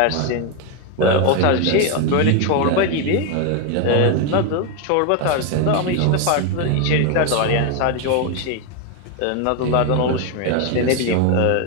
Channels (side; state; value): both; different; correlation 0.01